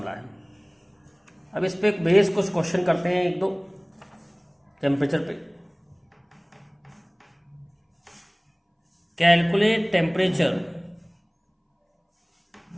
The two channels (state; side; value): identical; both; correlation 1.00